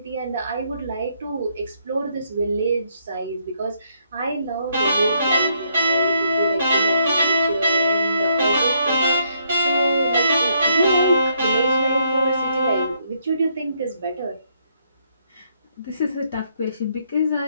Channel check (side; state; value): both; inverted; correlation -0.72